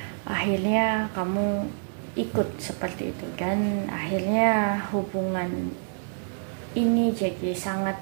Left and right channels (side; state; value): left; silent; 60 dB below the other